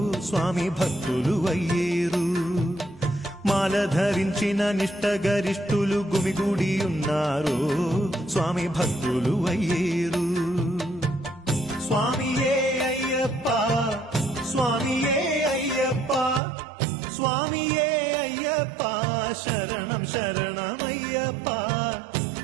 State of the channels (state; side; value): drops out; left; at 16.4 s